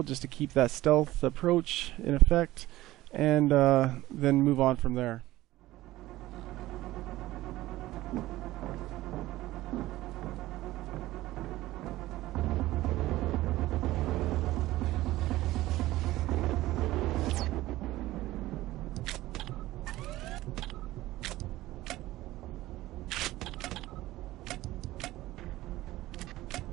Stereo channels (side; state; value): left; quieter; 16.8 dB